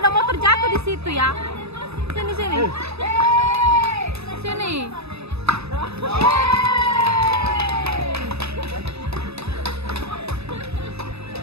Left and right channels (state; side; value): late; left; 0.79 ms